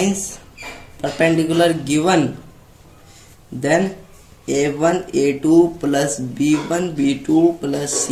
perpendicular given then a1 a2 plus b1 b2 plus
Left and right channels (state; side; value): identical; both; correlation 1.00